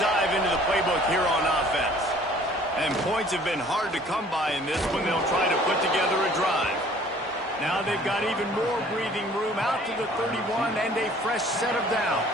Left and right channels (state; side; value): normal; both; correlation 0.54